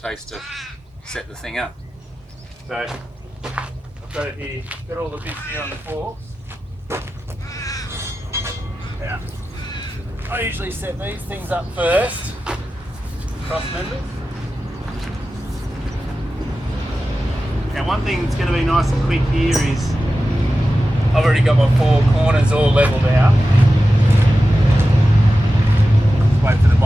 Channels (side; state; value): both; normal; correlation 0.93